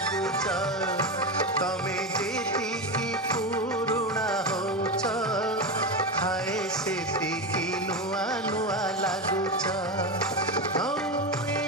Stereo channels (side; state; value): both; normal; correlation 0.17